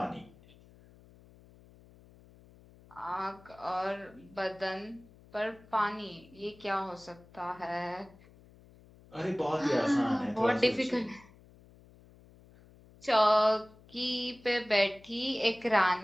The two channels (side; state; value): left; noise; hum, 25 dB below the sound